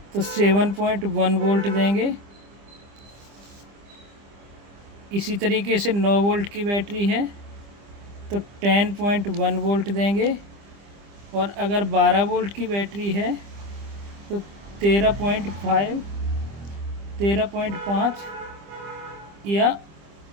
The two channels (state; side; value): late; left; 25 ms